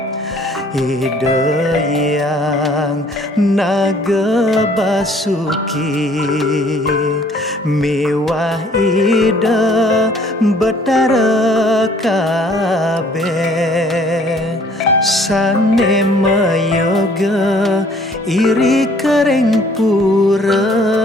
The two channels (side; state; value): both; normal; correlation 0.58